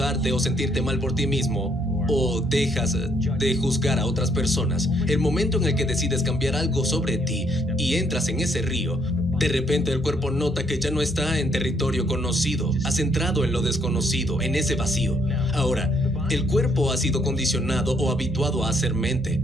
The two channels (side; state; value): both; normal; correlation 0.69